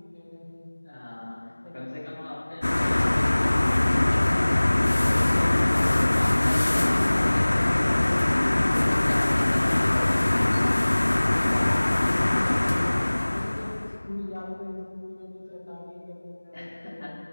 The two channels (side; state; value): both; inverted; correlation -1.00